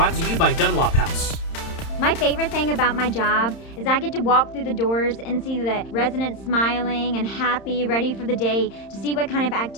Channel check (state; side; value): late; right; 31 ms